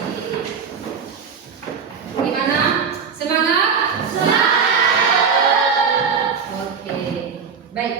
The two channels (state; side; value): quieter; left; 6.0 dB